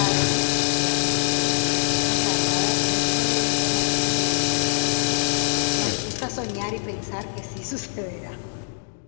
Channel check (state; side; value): silent; right; digital silence